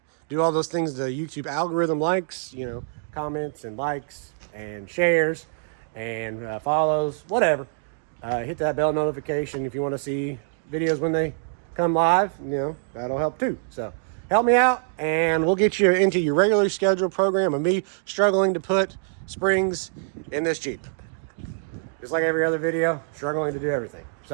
do all those things the YouTube algorithm likes, comments and likes and shares and follows, whatever. Hit that bell notification if you want to see videos when they come live, that'll help too. So help me out and we'll get you into your regularly scheduled program of me struggling to put springs in this Jeep. Just like every other video, struggling to do everything.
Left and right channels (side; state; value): left; silent; digital silence